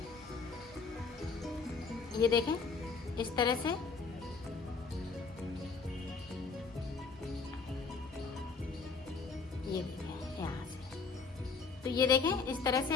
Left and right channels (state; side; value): quieter; right; 4.7 dB